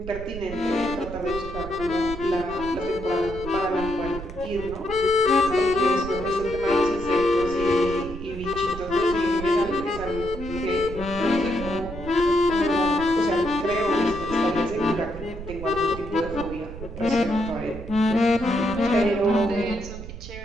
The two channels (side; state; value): right; noise; rumble, 11 dB below the sound